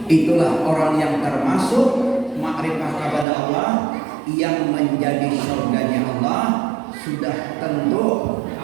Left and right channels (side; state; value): left; drops out; at 3.2 s